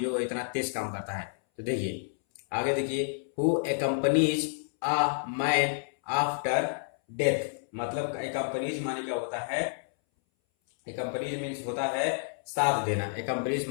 इतना तेज काम करता है। तो देखिए आगे देखिए, who accompanies a man after death। मतलब accompanies माने क्या होता है? accompanies मीन्स होता है साथ देना। accompanies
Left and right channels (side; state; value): right; silent; 58 dB below the other